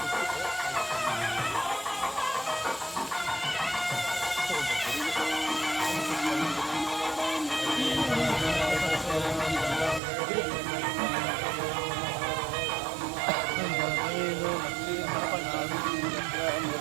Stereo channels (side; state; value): left; drops out; at 10.0 s